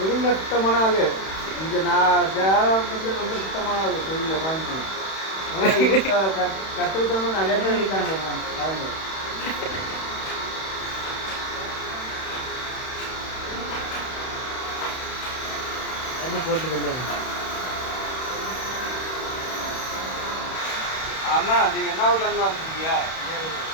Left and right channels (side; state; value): right; late; 31 ms